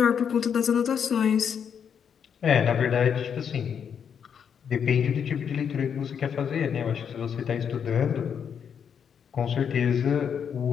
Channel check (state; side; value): quieter; right; 7.6 dB